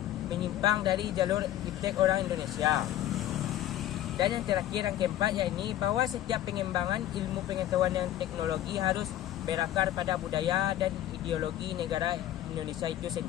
menyimpang dari jalur iptek orang Indonesia. Dan yang terakhir, yang keempat, yakni bahwa setiap pengembangan ilmu pengetahuan dan teknologi harus berakar pada budaya dan ideologi negara Indonesia itu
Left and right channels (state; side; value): quieter; right; 12.8 dB